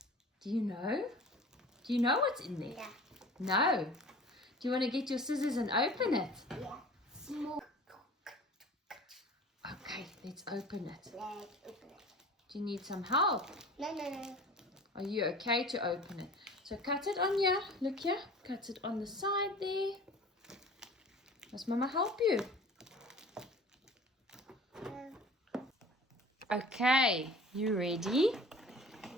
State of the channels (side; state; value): both; normal; correlation 0.43